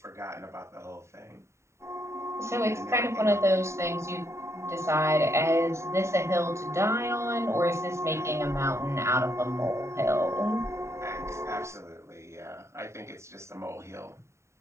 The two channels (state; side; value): late; left; 0.14 ms